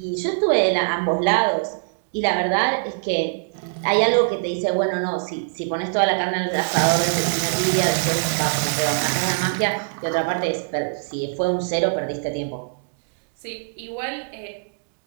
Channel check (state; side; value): silent; left; digital silence